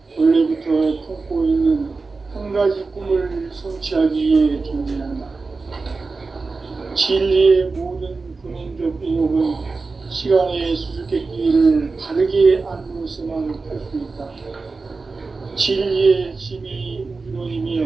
원래부터 품고 있는 한 가지 꿈을 성취하기 위해 존재한다. 진리의 모든 근원적 의혹은 시간의 수수께끼를 바르게 안으로서만 할 수 있다. 진리의 핵심이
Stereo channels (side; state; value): left; quieter; 4.0 dB